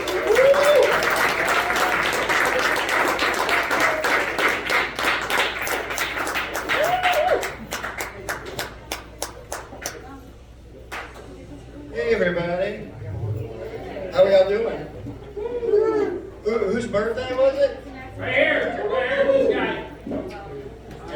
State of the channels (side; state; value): both; identical; correlation 1.00